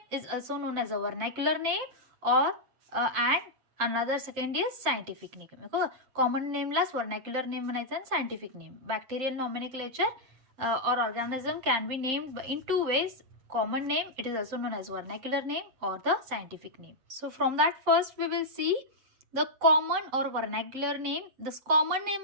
is also known as a vernacular name, or and another second is scientific name. Common name La vernacular name म्हणायचं and scientific name. Bacterial nomenclature or organism can be named in two ways. Common name, it is also known as vernacular name or the scientific name. So from that first we will see the common or vernacular name. This common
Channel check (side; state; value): left; late; 7.7 ms